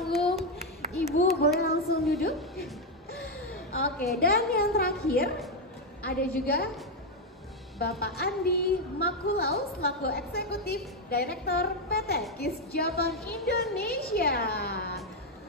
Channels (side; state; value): both; normal; correlation 0.04